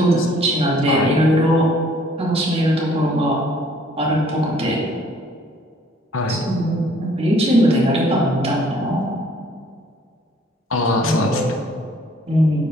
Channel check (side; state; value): both; normal; correlation 0.59